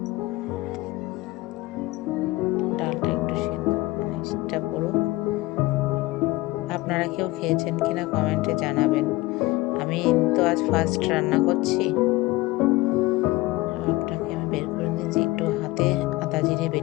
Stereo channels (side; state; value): right; quieter; 20.1 dB